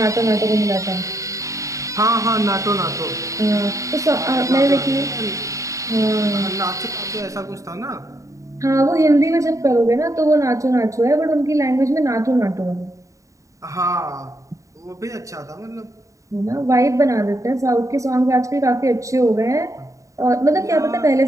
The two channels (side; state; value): left; late; 0.16 ms